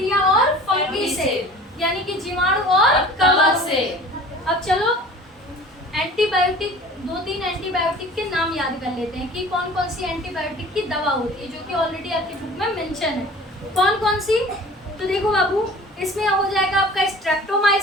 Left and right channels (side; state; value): both; normal; correlation 0.44